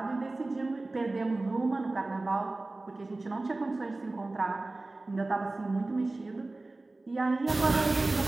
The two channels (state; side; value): quieter; left; 3.1 dB